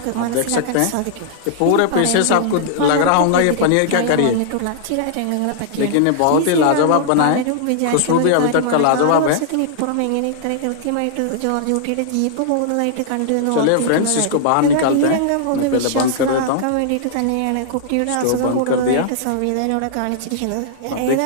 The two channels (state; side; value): different; both; correlation -0.01